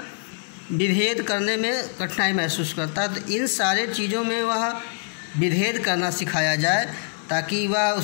विभेद करने में कठिनाई महसूस करता है। तो इन सारे चीज़ों में वह विभेद करना सिखाया जाए ताकि वह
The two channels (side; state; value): right; silent; digital silence